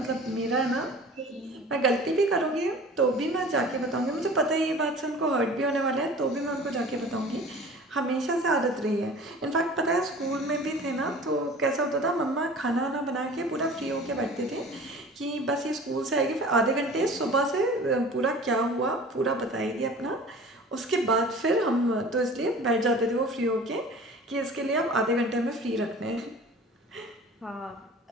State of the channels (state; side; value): normal; both; correlation 0.42